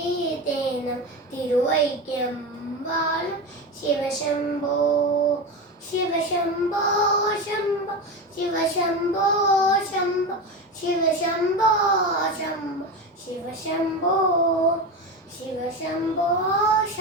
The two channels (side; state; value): both; normal; correlation 0.21